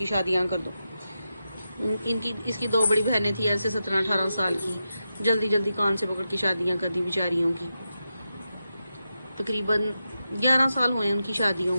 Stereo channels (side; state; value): both; inverted; correlation -0.89